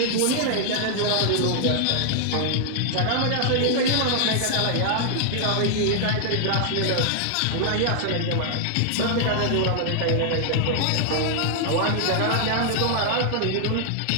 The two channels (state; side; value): different; both; correlation 0.00